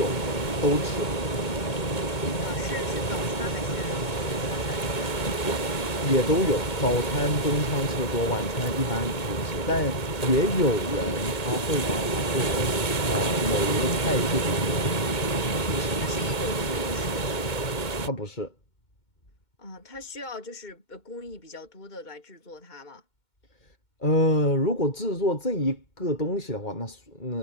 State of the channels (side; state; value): right; late; 2.2 ms